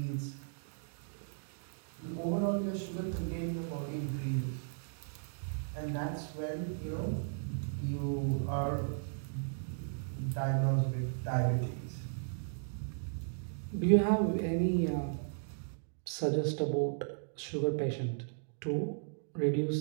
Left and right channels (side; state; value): left; silent; digital silence